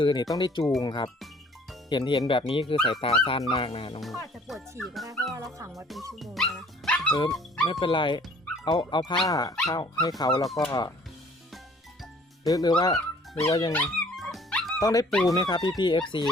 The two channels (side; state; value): both; normal; correlation 0.55